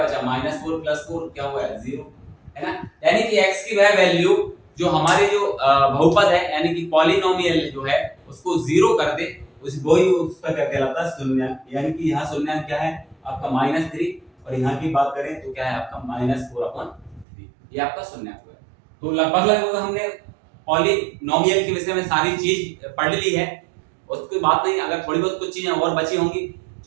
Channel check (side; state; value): left; drops out; at 17.2 s